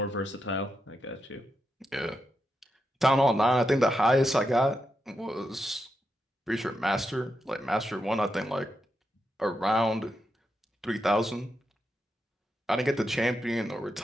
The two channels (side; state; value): both; normal; correlation 0.85